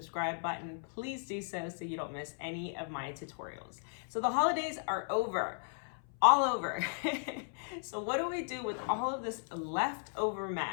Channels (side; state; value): right; silent; 54 dB below the other